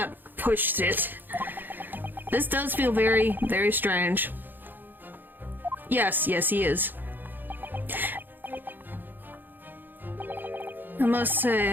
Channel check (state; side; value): late; left; 0.091 ms